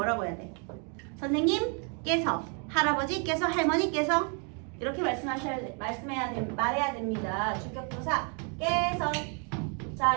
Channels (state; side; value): quieter; left; 38.4 dB